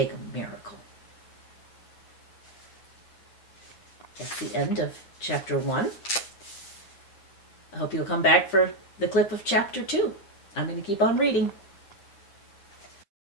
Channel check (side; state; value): right; late; 9.9 ms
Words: a miracle. That's the end of chapter 1. I hope you'll come back for the clip of chapter 2. I'm going to keep on reading.